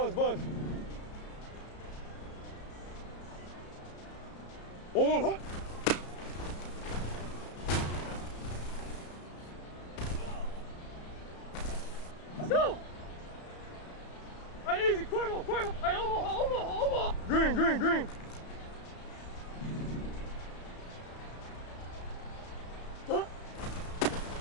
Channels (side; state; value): right; late; 34 ms